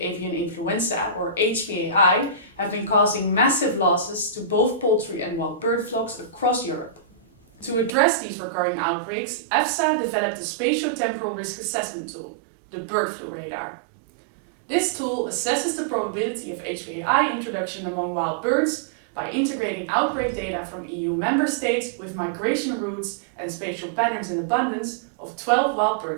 influenza, or HPAI, have been causing massive losses to both poultry and wild bird flocks across Europe. To address these recurring outbreaks, EFSA developed a spatio-temporal risk assessment tool, the bird flu radar. This tool assesses the probability of HPAI introduction among wild birds by integrating outbreak data from EU member states with migration routes and spatial patterns in abundance of 12 wild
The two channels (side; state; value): left; drops out; at 7.9 s